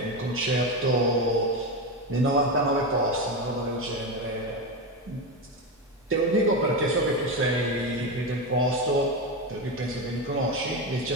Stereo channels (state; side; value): normal; both; correlation 0.15